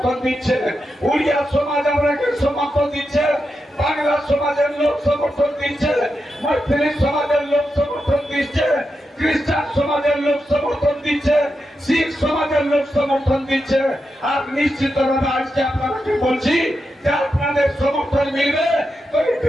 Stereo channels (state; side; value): normal; both; correlation 0.87